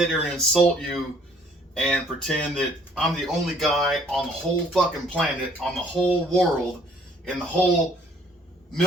here and insult you and pretend that I'm the only guy on the whole fucking planet, on the whole world, in the whole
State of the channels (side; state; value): both; normal; correlation 0.60